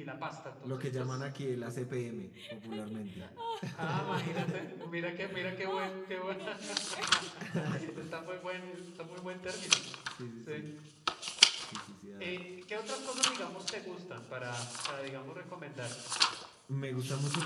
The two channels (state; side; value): identical; both; correlation 1.00